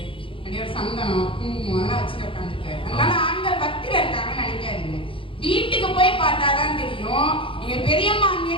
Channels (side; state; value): right; late; 0.25 ms